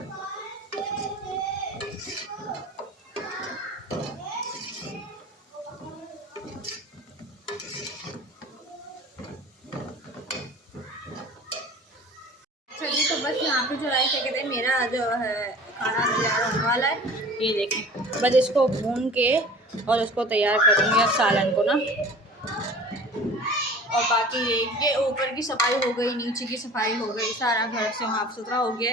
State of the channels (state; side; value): normal; both; correlation 0.42